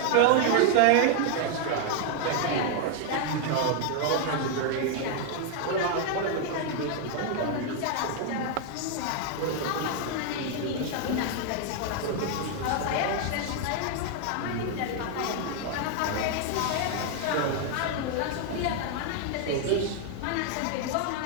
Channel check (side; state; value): both; different; correlation 0.00